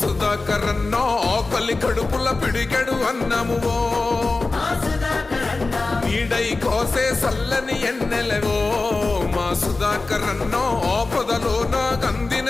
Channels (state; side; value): quieter; right; 3.5 dB